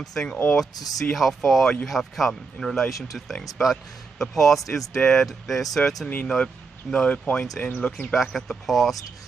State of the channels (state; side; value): quieter; left; 4.6 dB